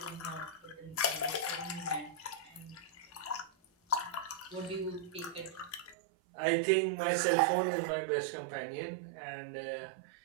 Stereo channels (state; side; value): drops out; left; at 6.0 s